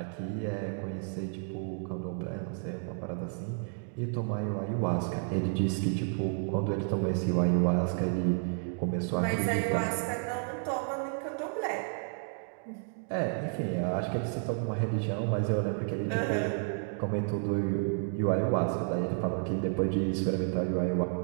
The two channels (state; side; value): silent; left; 57 dB below the other